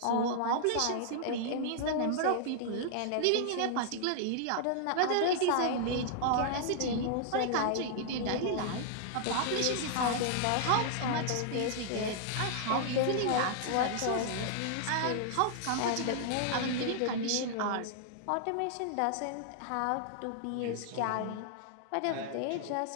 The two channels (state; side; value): different; both; correlation -0.01